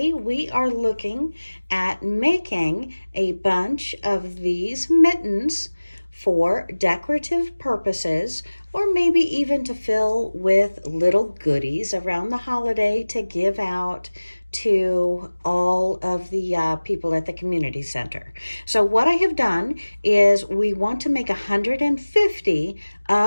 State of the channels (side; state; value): both; inverted; correlation -1.00